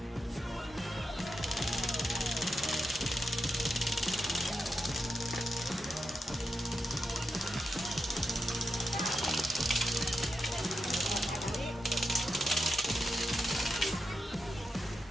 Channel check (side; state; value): both; normal; correlation 0.87